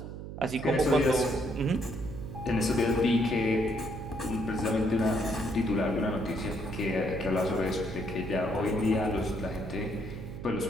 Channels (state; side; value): noise; right; hum, 9 dB below the sound